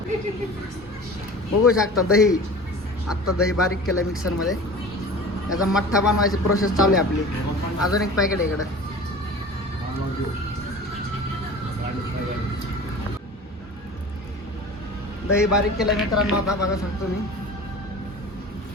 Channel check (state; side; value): normal; both; correlation 0.39